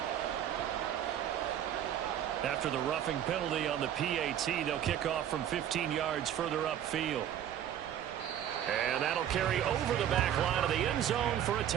After the roughing penalty on the PAT, they'll kick off from 15 yards further upfield. And that'll carry over the back line of the end zone for a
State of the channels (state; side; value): quieter; left; 10.4 dB